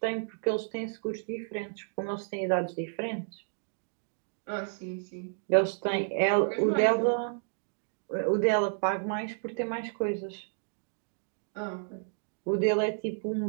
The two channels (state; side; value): silent; left; digital silence